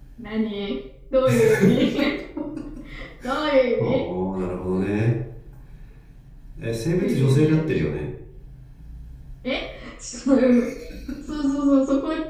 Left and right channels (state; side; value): identical; both; correlation 1.00